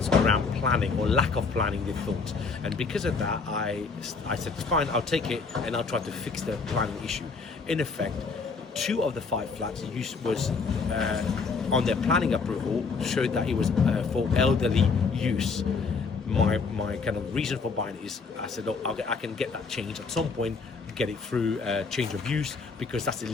around planning or lack of planning, they thought, and because of that I said fine, I'll take it and I'll try to fix the planning issue. In effect, 2 of the 5 flats was on their planning approval showed that it was for elderly use. My kind of reason for buying it is I said, look, I can get that changed at some point, get it through change of use, because that's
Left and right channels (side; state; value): right; quieter; 4.7 dB